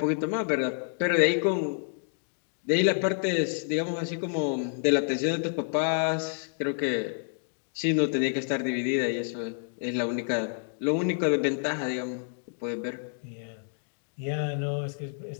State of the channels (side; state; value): right; silent; digital silence